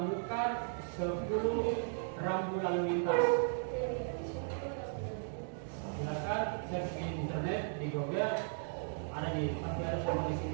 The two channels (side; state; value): left; silent; digital silence